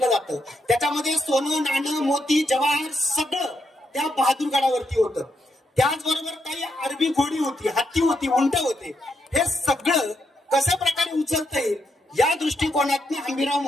जातं. त्याच्यामध्ये सोनं, नाणं, मोती, जवाहर सगळं त्या बहादूरगडावरती होतं. त्याचबरोबर काही अरबी घोडी होती, हत्ती होती, उंट होते. हे सगळं कशा प्रकारे उचलता येईल या दृष्टिकोनातून हंबीरराव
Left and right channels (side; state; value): both; normal; correlation 0.80